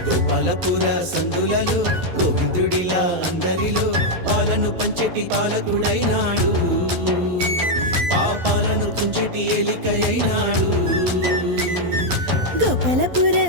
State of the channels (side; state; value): left; late; 12 ms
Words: గోపాలపుర సందులలో గోవిందుడిలా అందరిలో పాలను పంచెటి పాలకుడైనాడు, పాపాలను తుంచెటి ఏలికై అయినాడు. గోపాలపుర